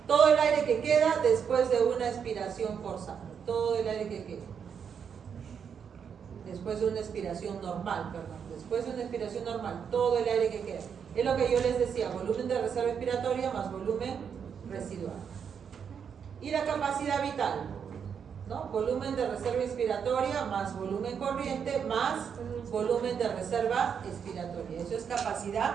todo el aire que queda después de una expiración forzada, todo el aire que queda. Después de una expiración normal, después de una expiración normal, todo el aire que queda. Es lo que yo les decía, volumen de reserva expiratoria más volumen residual. Y la capacidad vital. ¿no? Volumen de reserva expiratoria más volumen corriente más volumen de reserva expiratoria. Eso es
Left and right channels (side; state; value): left; quieter; 7.2 dB